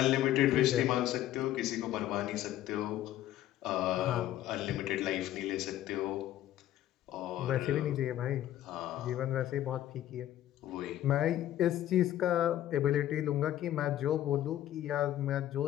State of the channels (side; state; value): right; quieter; 12.9 dB